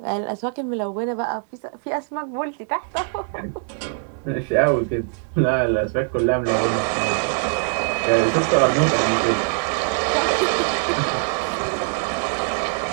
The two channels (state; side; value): silent; left; 58 dB below the other